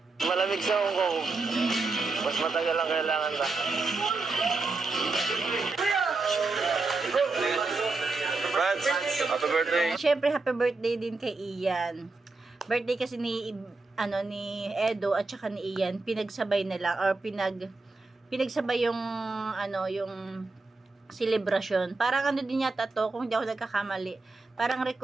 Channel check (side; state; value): left; quieter; 3.7 dB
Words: Malamig sa Hong Kong. Mas matagal ang kailangan na. Brad, happy birthday. Siyempre, happy birthday din kay Ian. Birthday kasi ni Edo at saka ni Ian, pinagsabay na lang or pinagsabay yung yung celebration. Parang din yata to, kung hindi ako nagkakamali. Parang